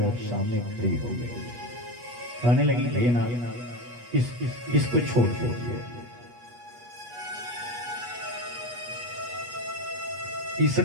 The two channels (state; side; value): late; left; 8.3 ms